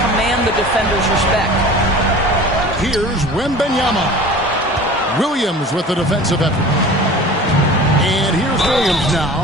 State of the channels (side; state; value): both; normal; correlation 0.40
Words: command the defender's respect. Here's Wembanyama. Williams with the defensive effort. And here's Williams